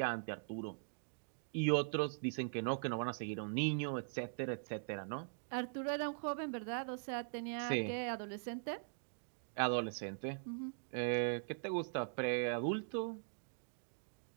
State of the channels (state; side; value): silent; left; digital silence